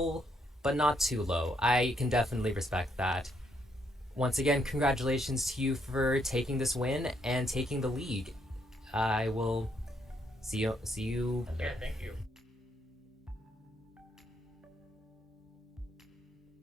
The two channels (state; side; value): normal; both; correlation 0.74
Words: but not too low. I can definitely respect that. Once again, congratulations to you for taking this win and taking the league. I will see you. Yeah, thank you.